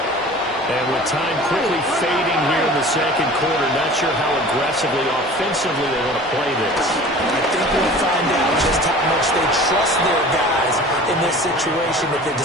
And with time quickly fading here in the second quarter, not sure how aggressively, offensively they want to play this. I think we'll find out just how much they trust their guys in this situation if they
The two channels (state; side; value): normal; both; correlation 0.42